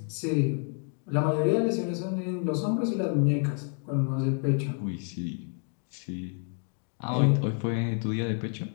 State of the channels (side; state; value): right; quieter; 39.8 dB